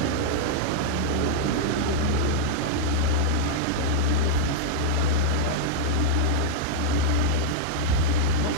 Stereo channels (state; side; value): different; both; correlation -0.02